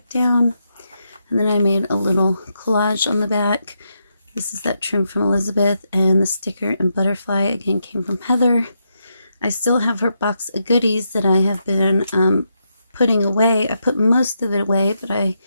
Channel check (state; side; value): inverted; both; correlation -0.82